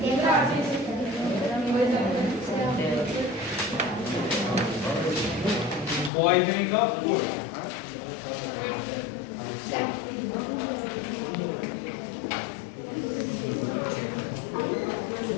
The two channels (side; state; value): right; drops out; at 6.1 s